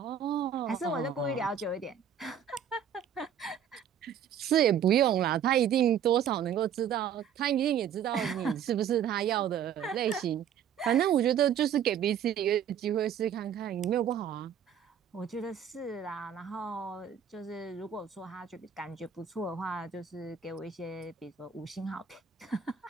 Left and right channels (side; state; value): left; quieter; 8.6 dB